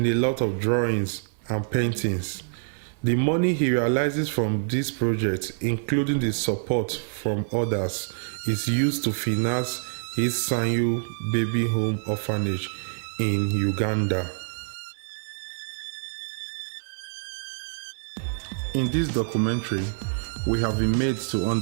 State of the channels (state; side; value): silent; left; 57 dB below the other